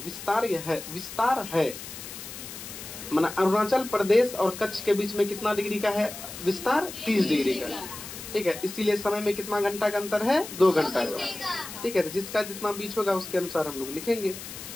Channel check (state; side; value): noise; left; hiss, 11 dB below the sound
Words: है। माना अरुणाचल प्रदेश और कच्छ के बीच में कितना डिग्री का है विस्तार? 30 डिग्री का। ठीक है, इसीलिए समय में कितना घंटा का अंतर है? 2 घंटा का। ठीक है, तो जिसका जितना बीच होगा उसके अनुसार हम लोग लिखेंगे।